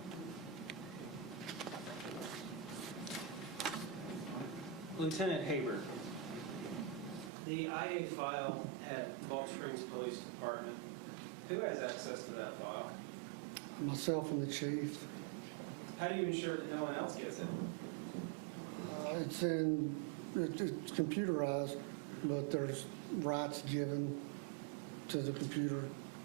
Lieutenant Haber, the IA file at Gulf Springs Police Department, who has access to that file? Myself and the chief. How do you ensure that no one else gets it? It's computerized, but there's rights given to the computer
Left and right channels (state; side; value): drops out; left; at 7.3 s